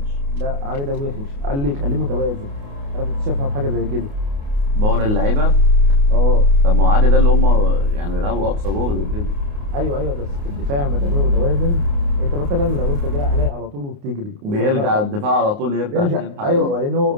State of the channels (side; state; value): left; late; 29 ms